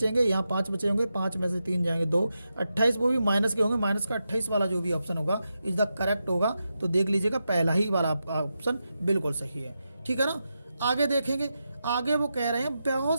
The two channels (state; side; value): inverted; both; correlation -0.88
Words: यहाँ 5 बचे होंगे, 5 में से 3 जाएंगे 2, 28 वो भी माइनस के होंगे, माइनस का 28 वाला जो भी ऑप्शन होगा इज द करेक्ट होगा। तो देख लीजिएगा पहला ही वाला ऑप्शन बिल्कुल सही है। ठीक है ना। आगे देखेंगे, आगे वो कह रहे हैं